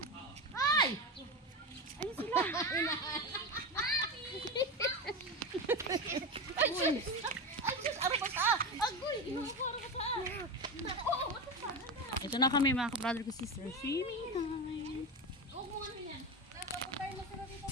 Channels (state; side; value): normal; both; correlation 0.20